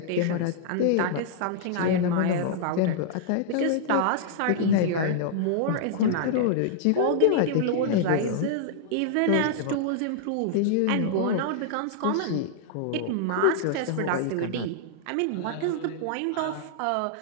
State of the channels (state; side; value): different; both; correlation -0.01